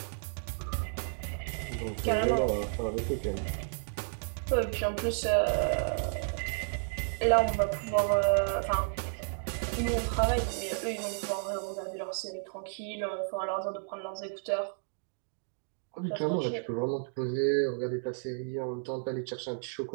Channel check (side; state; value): left; silent; digital silence